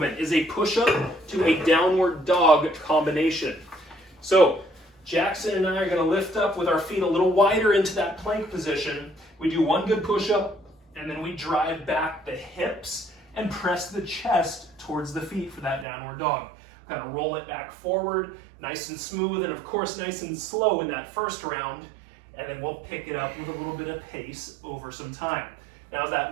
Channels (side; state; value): left; drops out; at 15.9 s